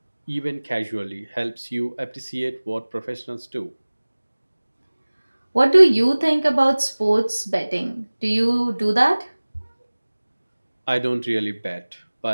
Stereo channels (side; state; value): both; inverted; correlation -1.00